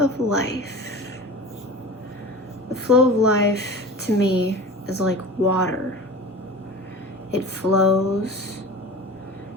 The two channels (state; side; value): normal; both; correlation 0.35